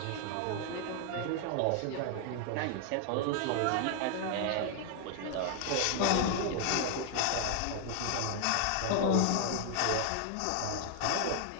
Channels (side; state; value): both; different; correlation 0.00